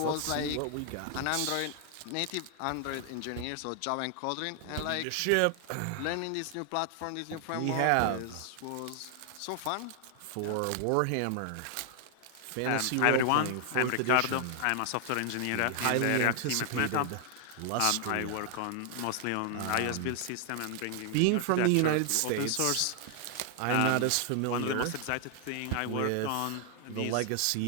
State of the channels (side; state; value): both; different; correlation 0.00